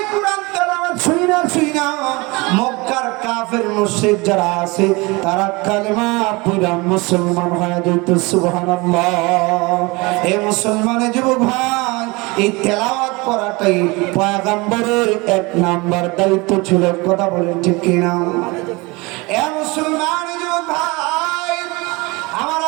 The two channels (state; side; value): quieter; left; 25.0 dB